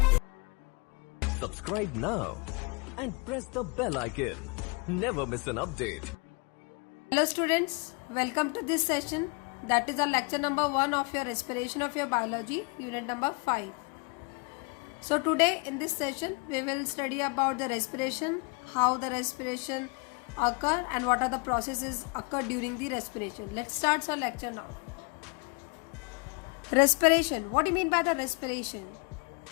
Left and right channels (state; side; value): quieter; right; 30.7 dB